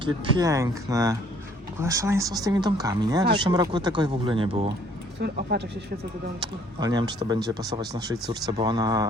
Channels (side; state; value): both; normal; correlation 0.60